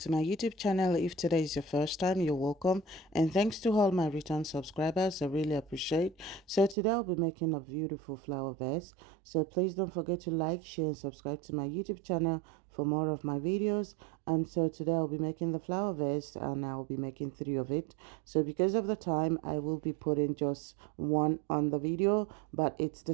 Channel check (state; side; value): drops out; left; at 6.8 s